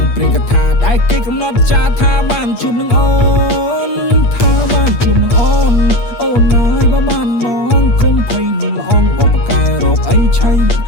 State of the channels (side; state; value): right; late; 8.4 ms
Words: ព្រេងកថាដែលគេកំណត់ចាថាបានជួបនឹងអូនថាបានជួបនឹងអូនណាយបើបានមកគុំភ័យនឹងល្អងបបកែរោគអីឆៃ